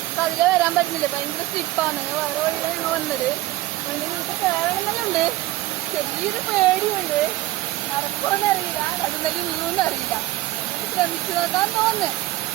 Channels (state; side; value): quieter; left; 17.3 dB